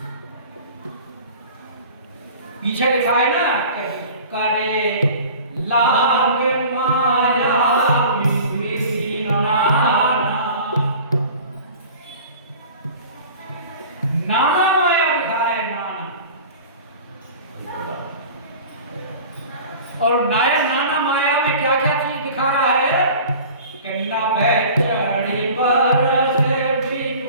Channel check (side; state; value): both; inverted; correlation -0.42